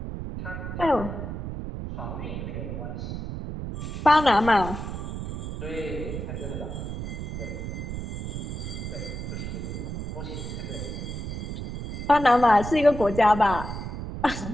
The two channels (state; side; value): noise; right; rumble, 6 dB below the sound